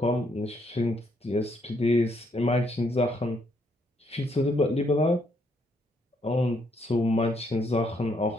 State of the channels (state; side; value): normal; both; correlation 0.73